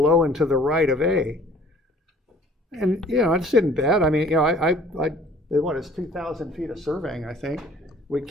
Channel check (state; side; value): normal; both; correlation 0.53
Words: and to the right of A. And, it's isn't bad. I mean, it's 2,000 feet of surveying, I think. We